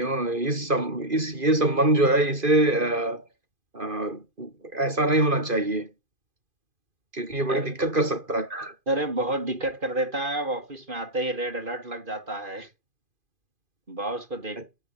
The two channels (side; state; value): left; late; 2.5 ms